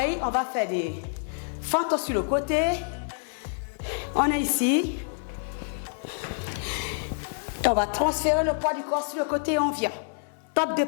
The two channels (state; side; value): silent; right; digital silence